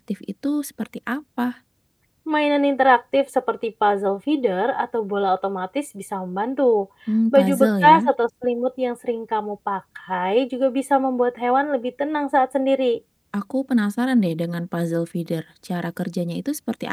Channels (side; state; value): both; identical; correlation 1.00